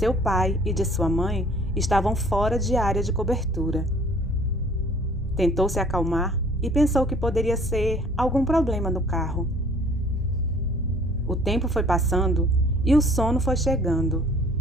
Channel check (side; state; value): both; normal; correlation 0.54